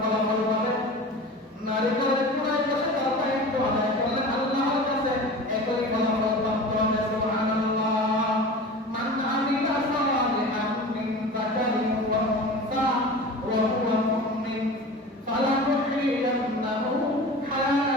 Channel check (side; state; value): both; normal; correlation 0.35